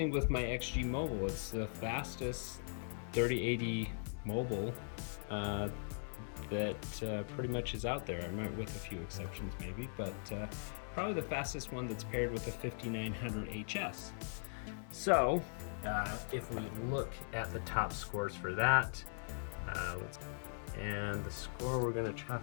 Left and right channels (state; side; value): silent; right; 51 dB below the other